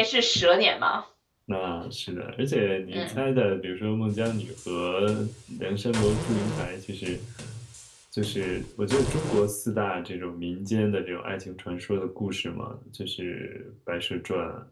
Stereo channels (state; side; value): identical; both; correlation 1.00